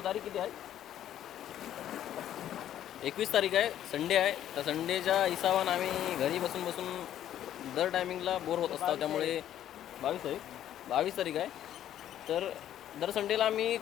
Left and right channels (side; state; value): right; quieter; 11.3 dB